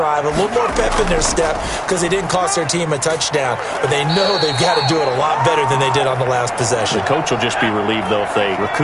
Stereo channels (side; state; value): both; identical; correlation 1.00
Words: A little more pep in their step because they didn't cost their team a touchdown. But they know they've got to do it a lot better than they did on the last possession. The coach will just be relieved, though, if they